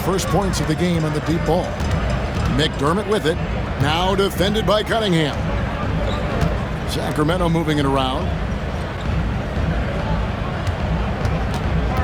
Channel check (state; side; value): identical; both; correlation 1.00